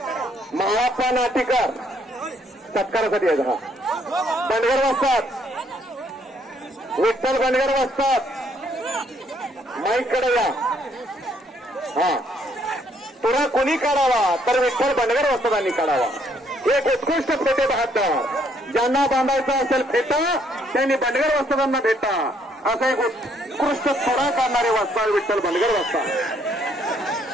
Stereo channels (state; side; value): normal; both; correlation 0.68